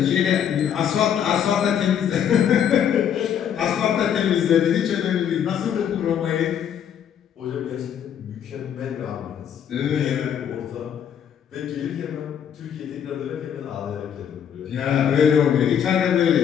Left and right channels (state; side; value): quieter; right; 8.8 dB